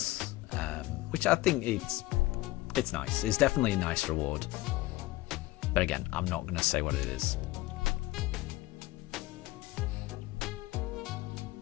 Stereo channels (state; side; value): quieter; right; 18.6 dB